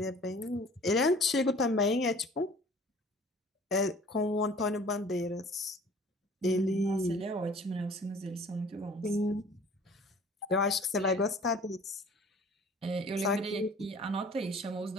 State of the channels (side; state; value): both; normal; correlation 0.49